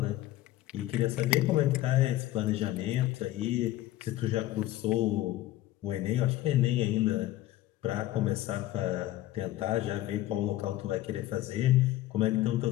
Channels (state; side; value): quieter; right; 15.1 dB